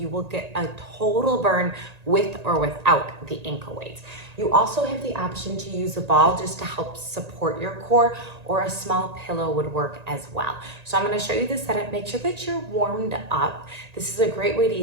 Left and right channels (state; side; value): late; left; 1.9 ms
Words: will get a total burn with or without the ankle weights. You also have the option to use a ball just to help support your core, or a small pillow would work as well. So I'm going to show you the setup. Make sure that you're warmed up. This is a great way to